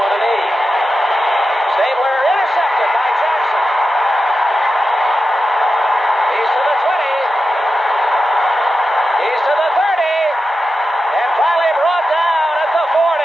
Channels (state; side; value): normal; both; correlation 0.90